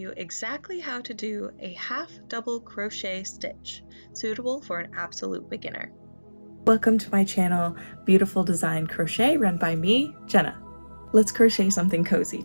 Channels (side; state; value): both; inverted; correlation -1.00